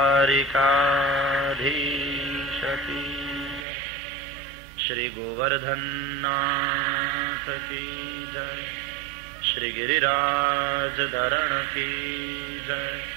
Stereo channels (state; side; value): drops out; left; at 3.7 s